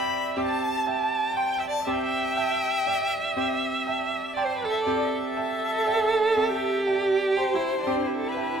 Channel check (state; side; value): normal; both; correlation 0.63